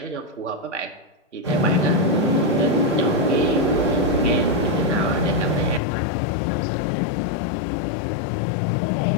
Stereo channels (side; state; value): right; drops out; at 5.8 s